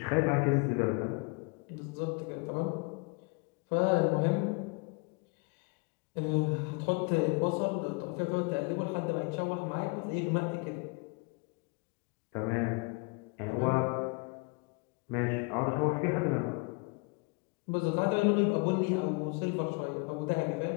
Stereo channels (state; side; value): quieter; right; 30.2 dB